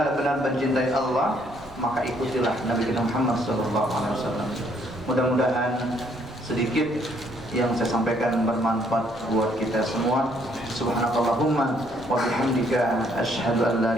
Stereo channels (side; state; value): both; normal; correlation 0.67